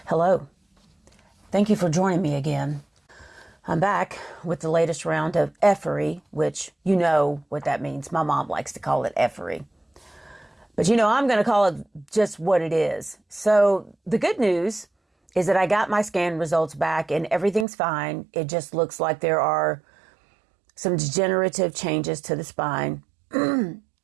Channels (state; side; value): drops out; left; at 17.7 s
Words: Hello. Thank you for joining me again. I'm back with the latest round of effery, which you know what that means. My mom likes to call it effery. But I'm going to call it just what it is. So the good news is that I got my scan results back and everything's fine. It just looks like there are some degenerative changes to the spine.